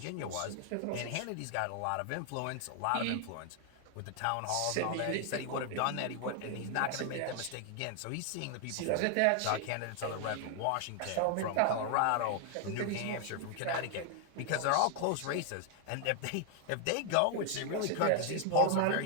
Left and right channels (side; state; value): both; different; correlation 0.00